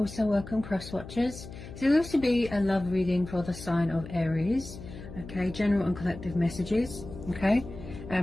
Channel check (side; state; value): left; noise; hum, 13 dB below the sound